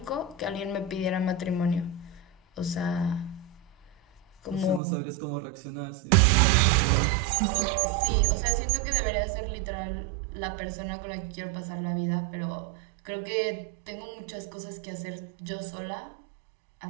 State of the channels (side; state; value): left; drops out; at 4.8 s